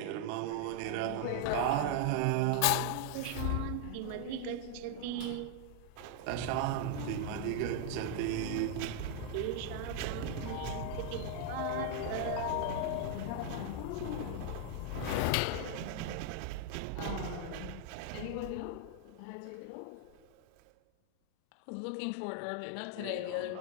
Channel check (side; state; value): both; different; correlation 0.00